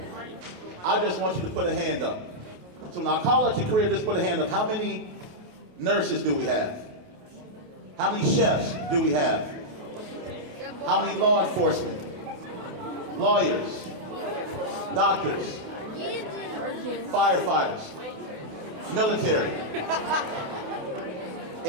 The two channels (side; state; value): left; late; 28 ms